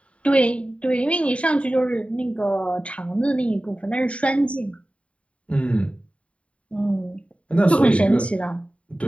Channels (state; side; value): late; right; 0.062 ms